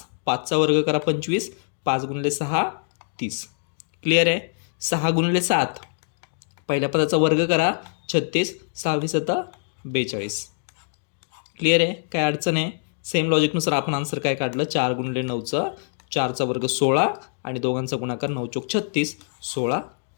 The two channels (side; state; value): right; silent; digital silence